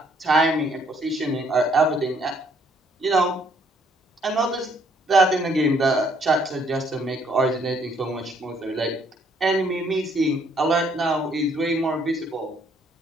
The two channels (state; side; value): normal; both; correlation 0.66